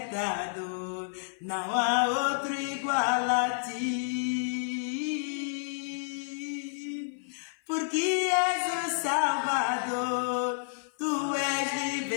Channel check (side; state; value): right; silent; 56 dB below the other